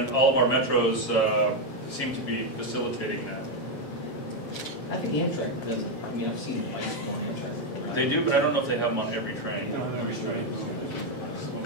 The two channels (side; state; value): right; late; 7.3 ms